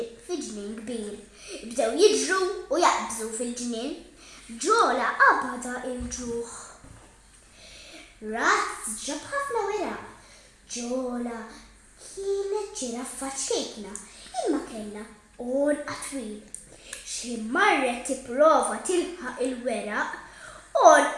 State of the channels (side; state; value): both; identical; correlation 1.00